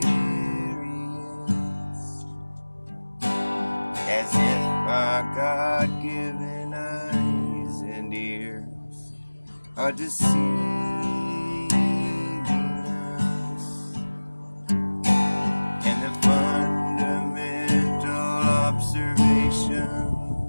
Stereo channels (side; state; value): both; inverted; correlation -1.00